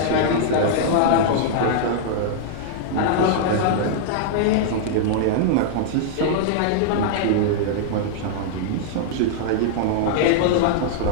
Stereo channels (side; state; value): both; different; correlation -0.01